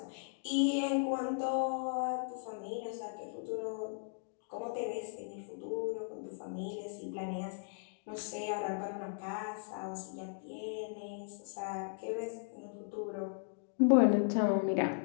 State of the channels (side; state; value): right; silent; digital silence